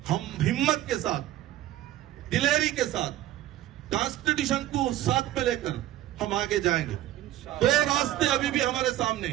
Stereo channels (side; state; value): left; quieter; 13.9 dB